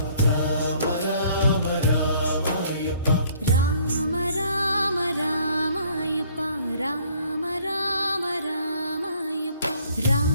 రామ రామ రామ అయ్యప్ప రామ రామ రామ అయ్యప్ప రామ రామ రామ అయ్యప్ప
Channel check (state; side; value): inverted; both; correlation -0.59